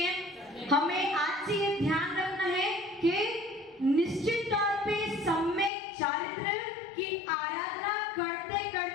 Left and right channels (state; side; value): drops out; right; at 5.7 s